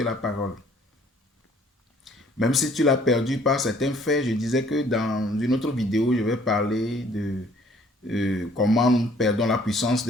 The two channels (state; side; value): normal; both; correlation 0.58